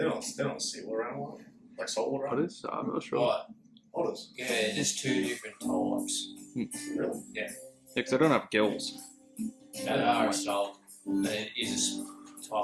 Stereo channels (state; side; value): identical; both; correlation 1.00